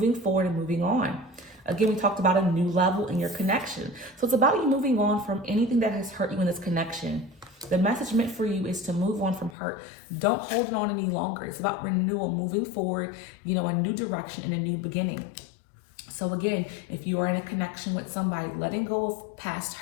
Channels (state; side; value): drops out; right; at 9.6 s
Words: forward and moving on. Again, we talked about a new level in your connection. So it's about you moving on from anything that has hurt you in this connection. The message meant for you is to move on from hurt. Don't hold it on any longer. It's about renewal, moving forward, a new direction and a new beginning. So again, if you are in a connection with somebody, letting go of past